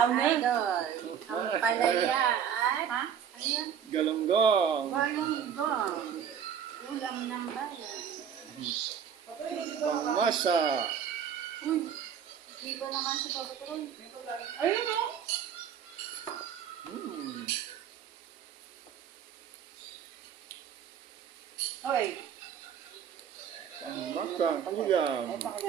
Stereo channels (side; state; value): left; quieter; 8.3 dB